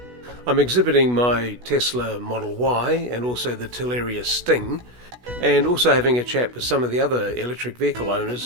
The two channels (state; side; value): late; left; 16 ms